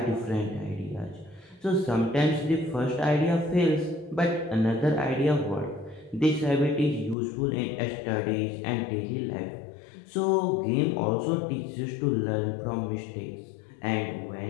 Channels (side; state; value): right; drops out; at 7.2 s